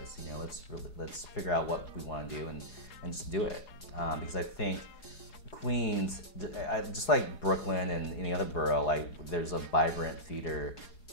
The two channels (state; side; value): late; right; 4.8 ms